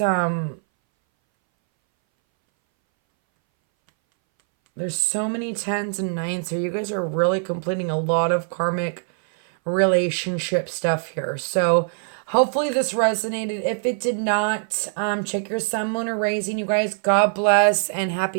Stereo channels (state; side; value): silent; left; 61 dB below the other